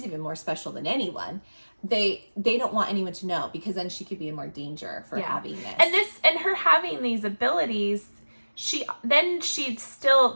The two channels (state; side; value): inverted; both; correlation -1.00